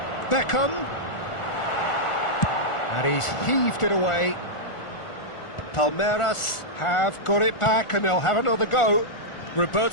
Beckham. And he's heaved it away. Palmeiras have got it back and they'll have another go.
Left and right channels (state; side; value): late; right; 1.4 ms